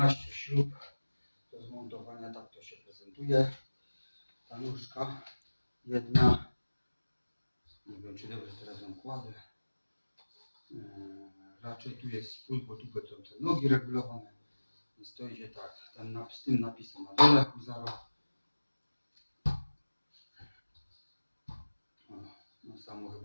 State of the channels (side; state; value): both; inverted; correlation -1.00